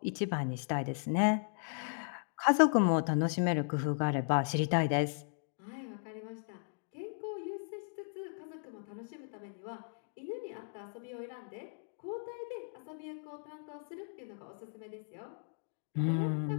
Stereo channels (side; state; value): right; silent; digital silence